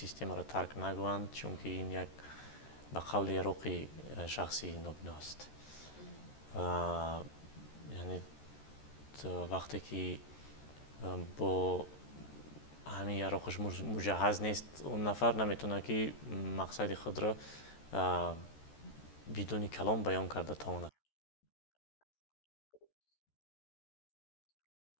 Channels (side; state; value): right; late; 13 ms